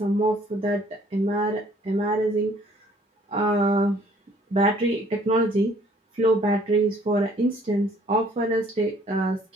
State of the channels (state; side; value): normal; both; correlation 0.58